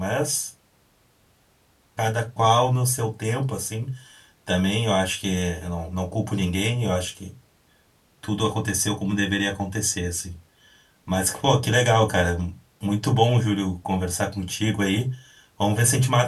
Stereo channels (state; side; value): identical; both; correlation 1.00